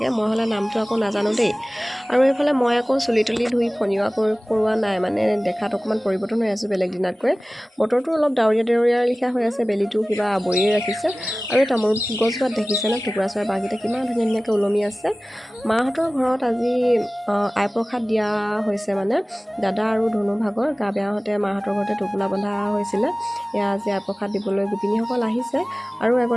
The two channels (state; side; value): normal; both; correlation 0.98